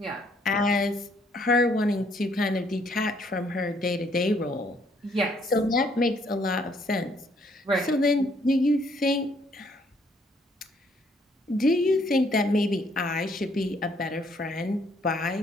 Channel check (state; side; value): normal; both; correlation 0.67